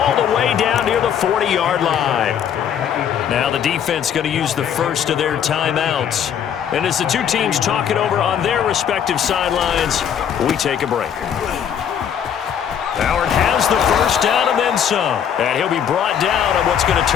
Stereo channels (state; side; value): quieter; right; 8.7 dB